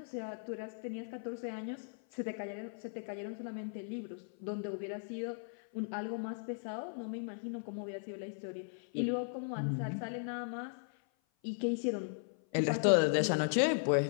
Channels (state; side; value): silent; right; 53 dB below the other